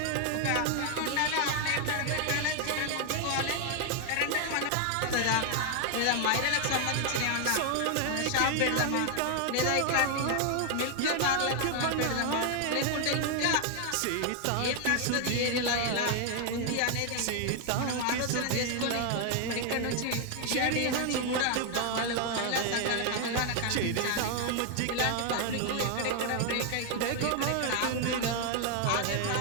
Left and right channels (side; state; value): both; different; correlation 0.00